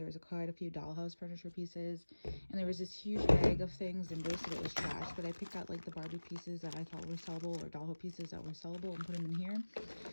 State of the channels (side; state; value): both; inverted; correlation -1.00